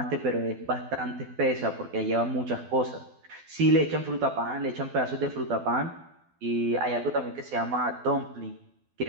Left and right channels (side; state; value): left; late; 12 ms